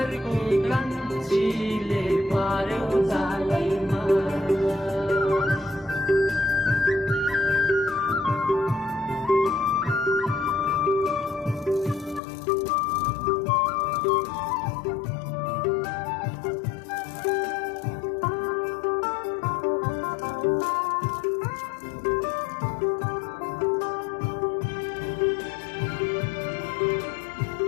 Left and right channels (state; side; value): drops out; right; at 12.2 s